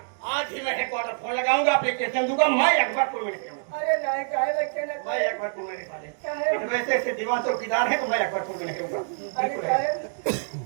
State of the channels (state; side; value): silent; left; digital silence